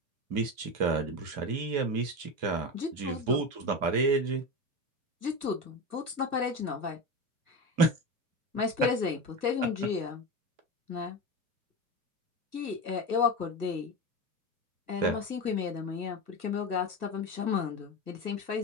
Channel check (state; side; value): late; left; 2.7 ms